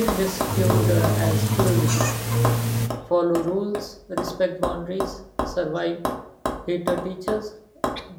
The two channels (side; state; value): both; identical; correlation 1.00